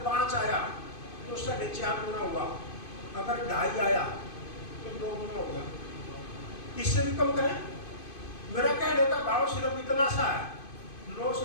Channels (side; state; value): right; late; 2.5 ms